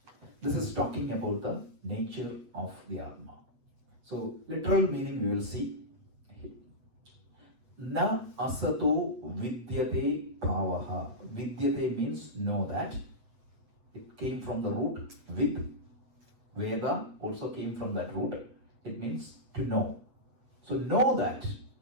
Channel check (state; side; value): late; left; 8.1 ms